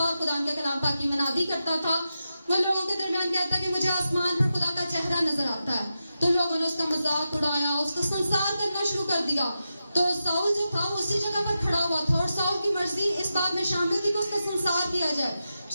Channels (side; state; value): both; inverted; correlation -0.89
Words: اور خدا کے کلام پاک کی منادی کرتا تھا۔ وہ لوگوں کے درمیان کہتا کہ مجھے آسمان پر خدا کا چہرہ نظر آتا ہے، تو لوگوں نے اس کا مذاق اڑایا، اس کو سنسار کرنا شروع کر دیا۔ تو ساؤل جو تھا اسی جگہ پر کھڑا ہوا تھا، اور ساؤل کی مرضی اس بات میں شامل تھی کہ اس کا سنسار کیا جائے۔